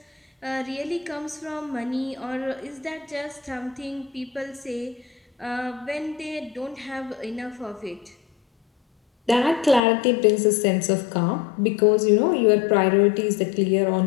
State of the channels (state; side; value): drops out; right; at 9.8 s